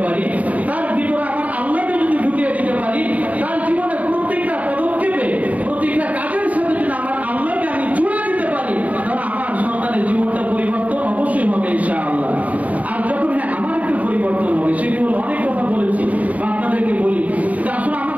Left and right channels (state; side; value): late; left; 0.071 ms